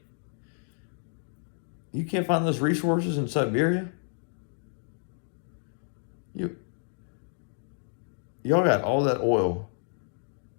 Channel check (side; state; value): right; silent; digital silence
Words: You can't find those resources in Siberia? Y'all got all that oil,